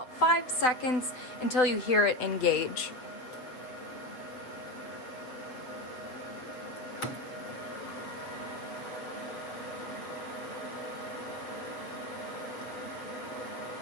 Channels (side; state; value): right; late; 7.5 ms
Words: 5 seconds until you hear it engage.